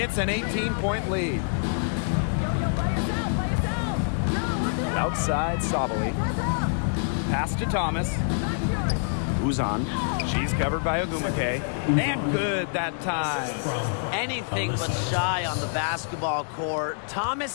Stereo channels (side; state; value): right; silent; digital silence